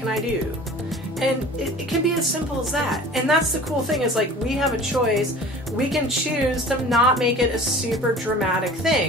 I do? And it can be as simple as that. And that's the cool thing is like we have a choice. We can choose to not make it a super dramatic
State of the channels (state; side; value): normal; both; correlation 0.43